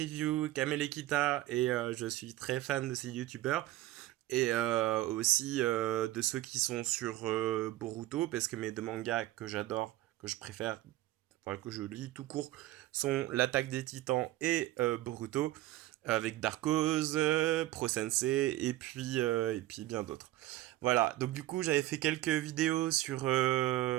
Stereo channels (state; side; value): quieter; left; 16.1 dB